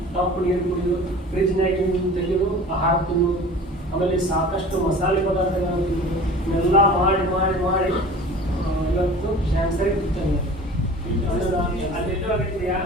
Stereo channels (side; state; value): both; normal; correlation 0.41